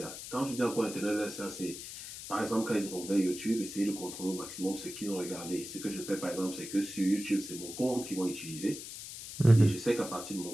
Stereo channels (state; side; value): noise; left; hiss, 10 dB below the sound